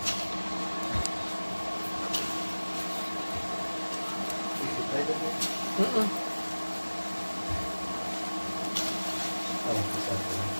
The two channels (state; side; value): inverted; both; correlation -1.00